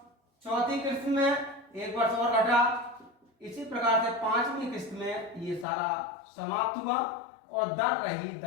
चौथी किस्त में 1 वर्ष और घटा। इसी प्रकार से 5वीं किस्त में ये सारा समाप्त हुआ और दर रही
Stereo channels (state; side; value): drops out; right; at 5.7 s